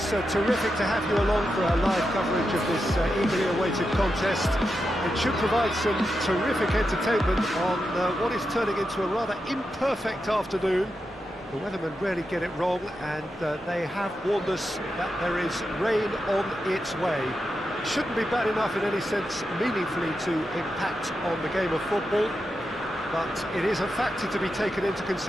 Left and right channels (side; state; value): both; normal; correlation 0.88